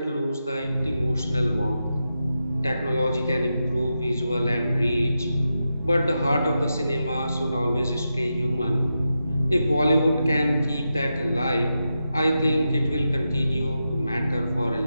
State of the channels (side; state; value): both; inverted; correlation -0.88